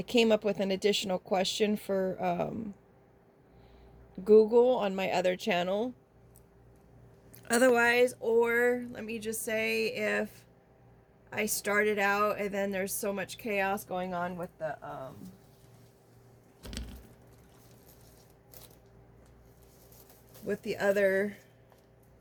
came up with an additional question for Google on my other channel. Otherwise, or let me just say, if I started out and then there's so much chaos going on with the other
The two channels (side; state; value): both; identical; correlation 1.00